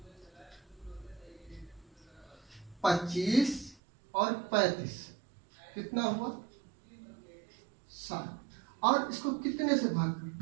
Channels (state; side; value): drops out; left; at 3.8 s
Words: 25 और 35 कितना हुआ, 7। और इसको कितने से भाग कर,